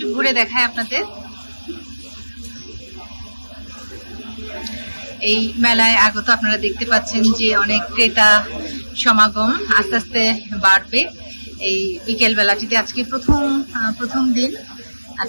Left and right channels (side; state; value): both; inverted; correlation -1.00